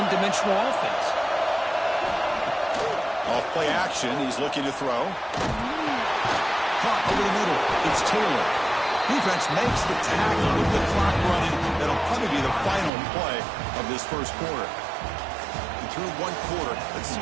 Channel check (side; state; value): left; drops out; at 12.9 s